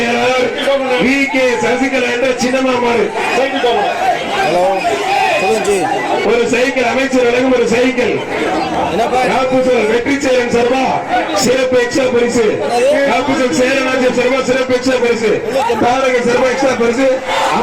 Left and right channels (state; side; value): identical; both; correlation 1.00